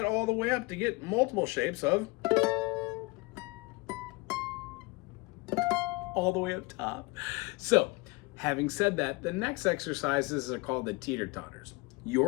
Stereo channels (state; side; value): quieter; right; 24.7 dB